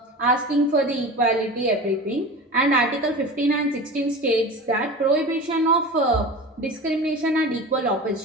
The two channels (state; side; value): normal; both; correlation 0.33